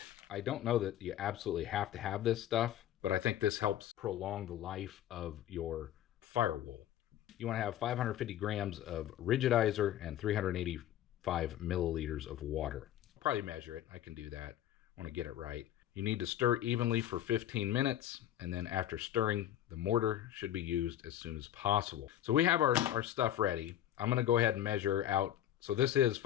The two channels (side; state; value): right; quieter; 11.9 dB